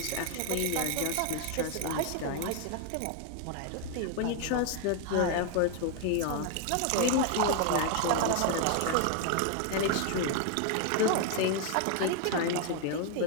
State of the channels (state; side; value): different; both; correlation 0.00